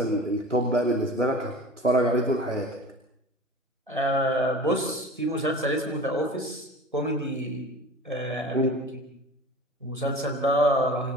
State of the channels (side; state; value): both; normal; correlation 0.38